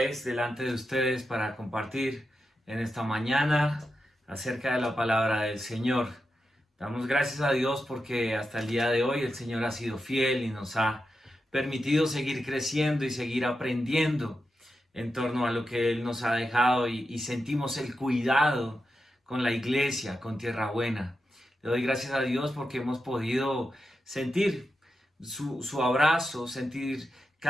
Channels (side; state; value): both; normal; correlation 0.88